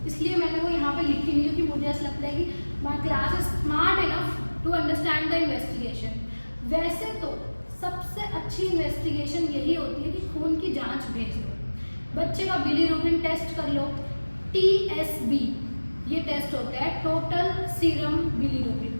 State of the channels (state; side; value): inverted; both; correlation -1.00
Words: इसलिए मैंने वो यहाँ पे लिखी नहीं क्योंकि मुझे ऐसा लगता है कि my class is smart enough to understand the investigation. वैसे तो सबसे अच्छी इन्वेस्टिगेशन यही होती है कि खून की जांच भेज दो, बच्चे का बिलीरुबिन टेस्ट कर लो, TSB ये टेस्ट होता है, टोटल सीरम बिलीरुबिन,